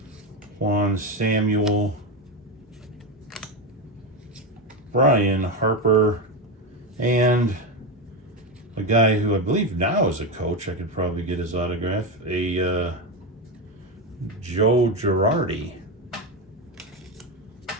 Juan Samuel. Brian Harper. And a guy who I believe now is a coach. I could probably get his autograph. A Joe Girardi.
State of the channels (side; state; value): both; normal; correlation 0.14